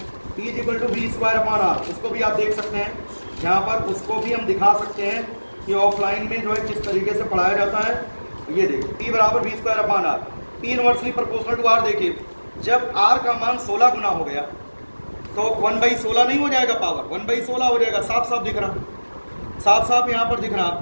P = V²/R। इसको भी आप देख सकते हैं यहाँ पर, उसको भी हम दिखा सकते हैं कि ऑफलाइन में जो है किस तरीके से पढ़ाया जाता है। ये देखिए, P बराबर V²/R, P inversely proportional to R। देखिए, जब R का मान 16 गुना हो गया तो 1/16 नहीं हो जाएगा, पावर 1/16 हो जाएगा। साफ दिख रहा, साफ यहाँ पर दिख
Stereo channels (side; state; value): both; inverted; correlation -1.00